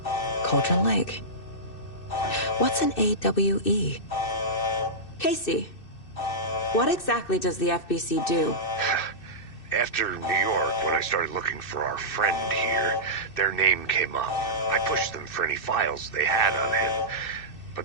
Cauldron Lake. What's an AWE? Casey, what exactly does the FBC do? After New York, when I started looking for our friend here, their name came up. I pushed them for any files they had on him,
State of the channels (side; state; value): right; late; 2.6 ms